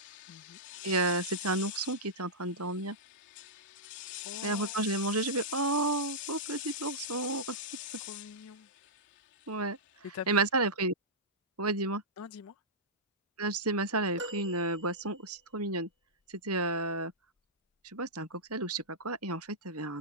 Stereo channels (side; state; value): both; normal; correlation -0.12